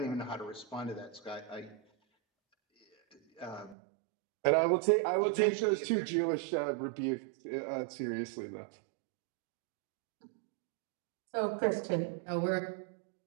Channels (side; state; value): left; drops out; at 3.8 s